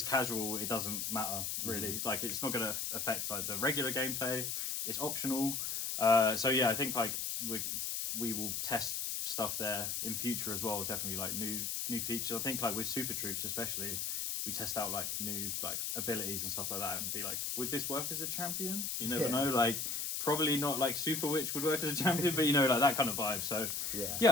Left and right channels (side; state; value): left; noise; hiss, 1 dB below the sound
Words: casual, it doesn't matter really. Like it's not gonna affect like the regular gameplay, it's optional. So yeah, I think like we will test stuff there in future as well, definitely like new features. I think like with super troops especially, we test out like new like abilities and stuff like that and be like, would this work as a champion? You never know, like probably not like Super Witch would work as a champion, but like that kind of vibe. So yeah,